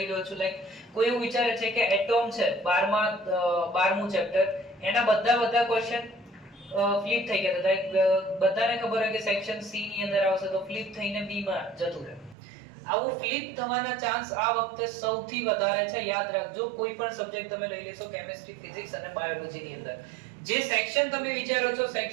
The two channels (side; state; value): left; drops out; at 12.4 s